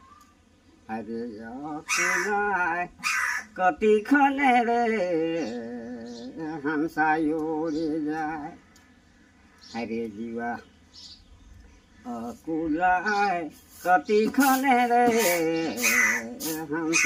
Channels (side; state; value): both; identical; correlation 1.00